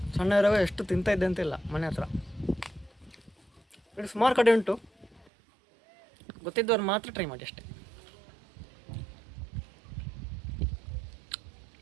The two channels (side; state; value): left; drops out; at 5.2 s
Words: ಸಣ್ಣ ಇರುವಾಗ ಎಷ್ಟು ತಿಂತಾ ಇದ್ದೆ ಅಂತಿಲ್ಲ ಮನೆ ಹತ್ರ. ಇದು ಸುಮಾರು ಕಡೆ ಉಂಟು, ಗೊತ್ತಿದ್ದವ್ರು ಮಾತ್ರ ಟ್ರೈ ಮಾಡಿ ಅಷ್ಟೇ.